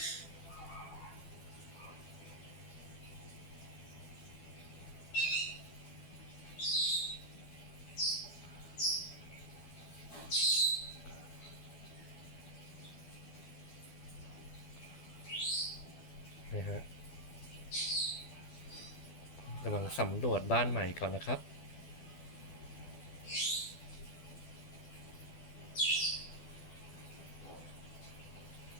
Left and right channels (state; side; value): late; right; 12 ms